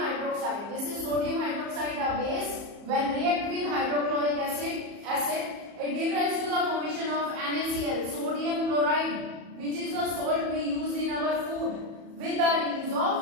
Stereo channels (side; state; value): left; late; 34 ms